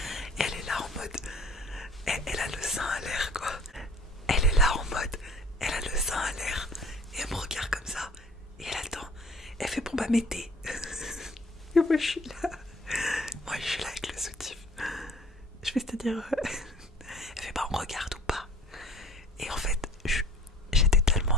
c'est-à-dire... Elle fait bah on regarde ou pas. Et en fait, j'étais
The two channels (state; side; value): normal; both; correlation 0.51